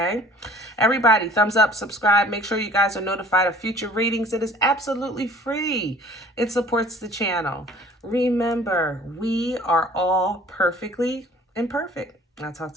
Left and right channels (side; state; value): both; normal; correlation 0.50